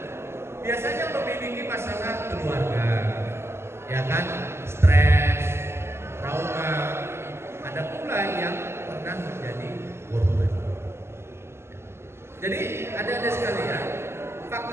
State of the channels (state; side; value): late; left; 0.12 ms